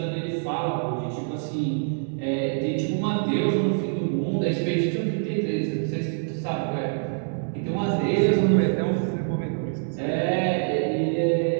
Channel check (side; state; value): left; silent; 62 dB below the other